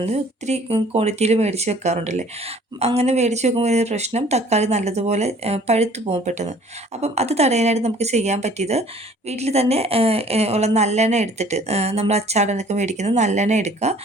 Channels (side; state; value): both; normal; correlation 0.53